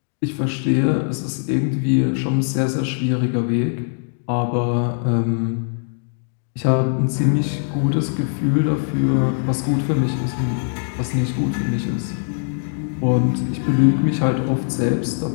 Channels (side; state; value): right; silent; digital silence